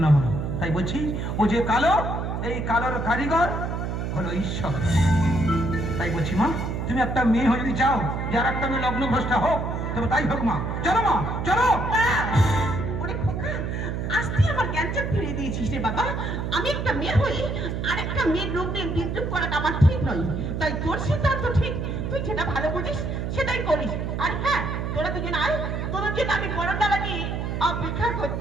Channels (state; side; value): noise; right; hum, 3 dB below the sound